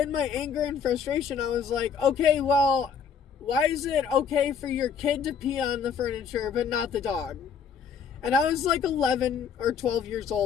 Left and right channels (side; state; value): right; quieter; 6.7 dB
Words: my anger and frustration, I was like, okay, well, why is it okay for your kid to pee on the furniture, but not the dog? And I was like 11 or 12 years